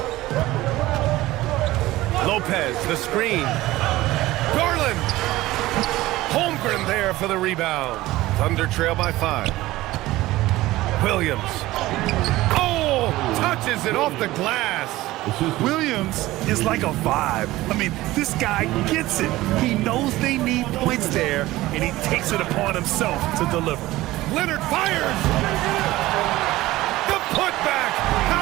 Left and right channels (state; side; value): quieter; left; 17.5 dB